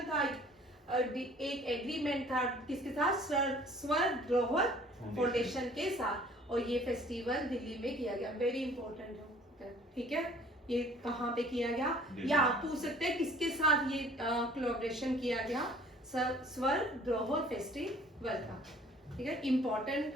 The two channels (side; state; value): both; normal; correlation 0.53